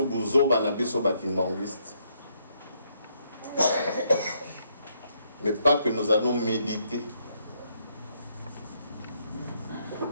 buzo bana biso bakimbangiste mais pas que nous allons méditer.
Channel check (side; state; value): both; inverted; correlation -0.73